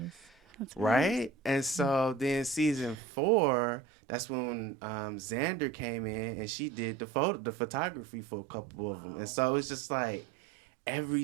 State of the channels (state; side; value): drops out; left; at 3.0 s